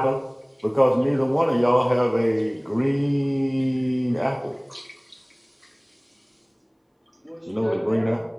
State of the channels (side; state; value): both; identical; correlation 1.00